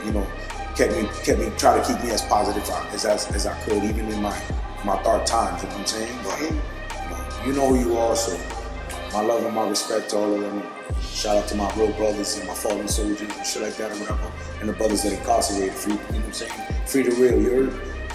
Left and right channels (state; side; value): identical; both; correlation 1.00